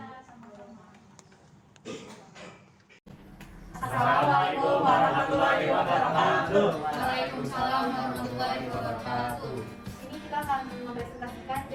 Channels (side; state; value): both; identical; correlation 1.00